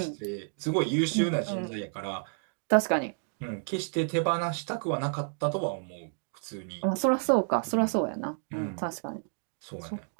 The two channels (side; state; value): left; silent; 58 dB below the other